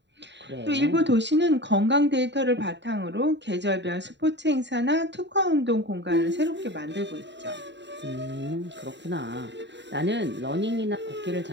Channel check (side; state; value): left; late; 0.52 ms